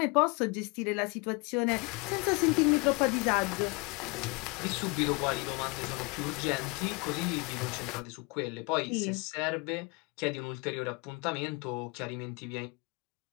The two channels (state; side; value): quieter; right; 28.9 dB